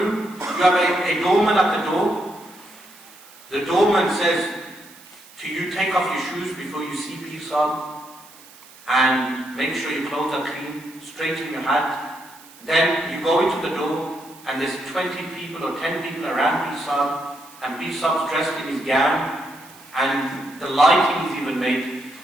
you have a doorman at the door. The doorman says to you, take off your shoes before you see peace on, and make sure your clothes are clean, straighten your hat. Then you go into the door, and there's 20 people or 10 people around Bisab, and Bisab's dressed in his gown, and the lighting is even made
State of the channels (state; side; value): noise; right; hiss, 22 dB below the sound